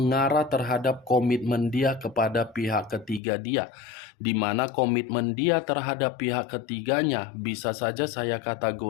terhadap komitmen dia kepada pihak ketiga dia, di mana komitmen dia terhadap pihak ketiganya bisa saja saya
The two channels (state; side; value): drops out; right; at 3.2 s